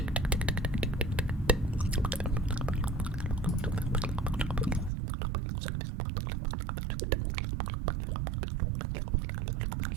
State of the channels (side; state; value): left; drops out; at 4.9 s